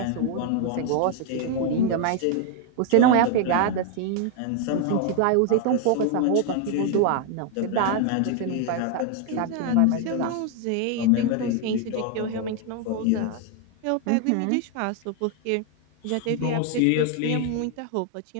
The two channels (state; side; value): different; both; correlation 0.01